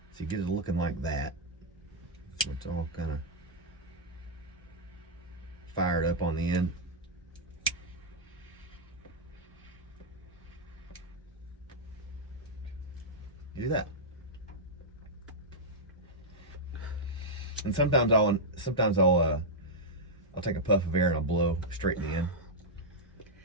you get it looking like that. So it's all kind of fired up on the end. You do that. And sometimes I'll take a puff of air and I'll blow straight in the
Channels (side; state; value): both; normal; correlation -0.06